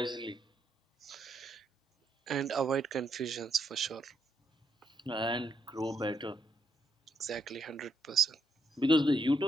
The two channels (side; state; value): both; normal; correlation 0.76